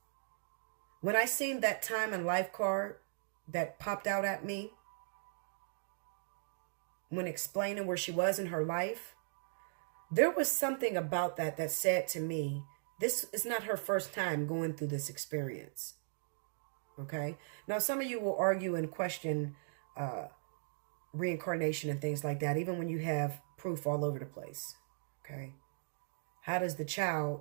When I seen that time and life card that popped out at me when explaining where she was in her life, there was something about that that said to me, this is not her first time going through this experience. Okay? Now, some of you will argue and question reincarnation and things like that, even when you have proof all over the place. Okay? How does the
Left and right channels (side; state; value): left; silent; digital silence